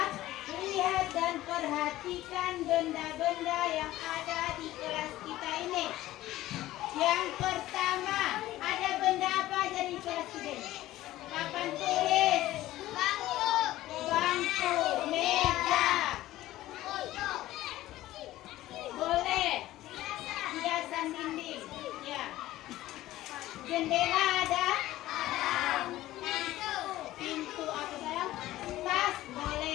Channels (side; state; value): right; quieter; 15.6 dB